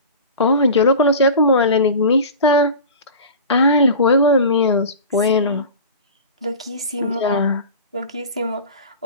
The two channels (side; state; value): both; inverted; correlation -0.34